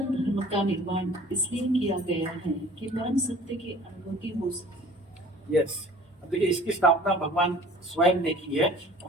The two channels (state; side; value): normal; both; correlation 0.48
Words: धर्म का निर्माण इसलिए किया गया है कि परम सत्य की अनुभूति हो सके। यस, अब देखिए इसकी स्थापना भगवान स्वयं ने की है।